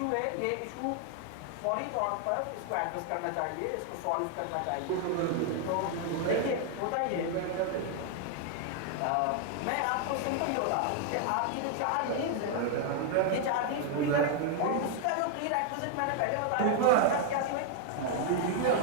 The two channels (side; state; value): both; different; correlation 0.00